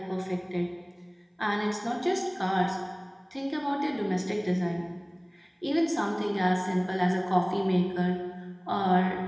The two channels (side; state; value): both; identical; correlation 1.00